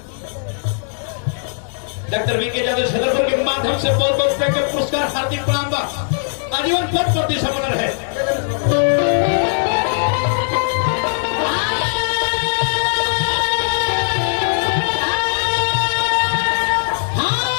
डॉक्टर वीके यादव छतरपुर के माध्यम से बहुत बहुत रुपए के पुरस्कार हार्दिक प्रणाम बा आजीवन पद प्रति समर्पण है।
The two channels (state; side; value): silent; right; digital silence